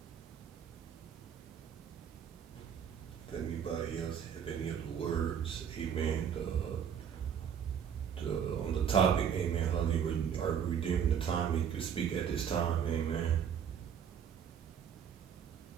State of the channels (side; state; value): left; quieter; 8.1 dB